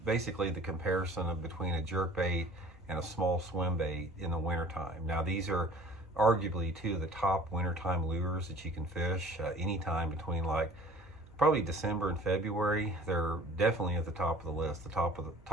basically the comparison between a jerkbait and a small swim bait in the wintertime. Now these are arguably two of the top wintertime lures that you can fish anytime between like probably December and February. They're definitely at the top of the list, the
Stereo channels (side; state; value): right; noise; rumble, 27 dB below the sound